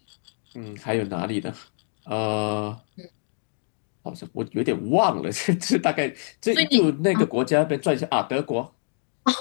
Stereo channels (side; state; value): right; silent; digital silence